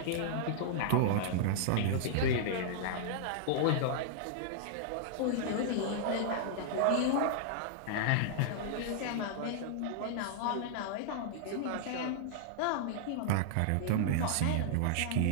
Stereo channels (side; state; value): both; different; correlation -0.01